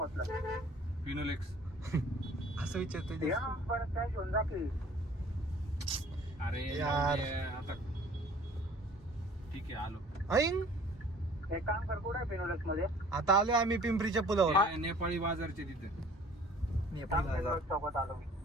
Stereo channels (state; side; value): normal; both; correlation 0.51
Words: फिनोलेक्स असं विचारतोय. अरे यार. आता ठीक आहे आलो. एक काम कर, कुठे फिनोलेक्स मध्ये आता आलोय आम्ही पिंपरीच्या पुलावर. नेपाळी बाजारचे तिथे.